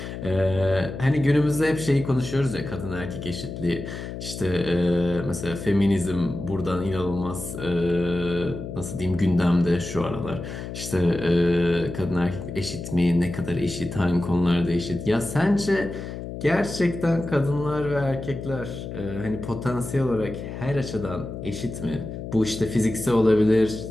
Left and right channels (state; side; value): noise; left; hum, 8 dB below the sound